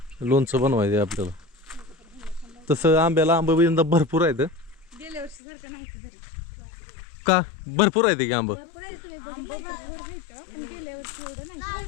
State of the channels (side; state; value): right; drops out; at 5.4 s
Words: लोणचं बनवायचं आहे आपल्याला. तसं आंब्याला आंबा यंदा भरपूर आहेत. गेल्या वर्षी सारखं नाही का भरपूर आहे की आंब?